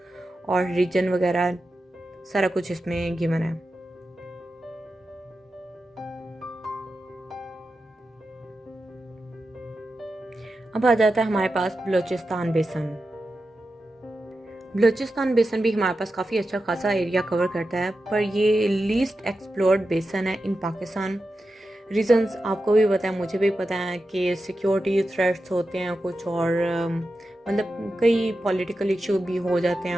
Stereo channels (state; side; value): normal; both; correlation 0.91